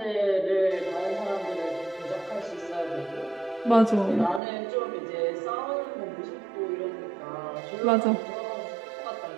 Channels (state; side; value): drops out; left; at 4.4 s